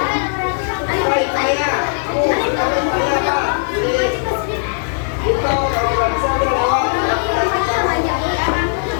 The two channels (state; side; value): silent; right; 64 dB below the other